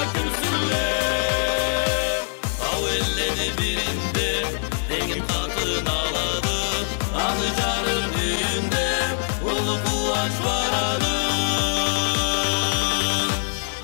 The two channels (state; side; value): silent; right; 63 dB below the other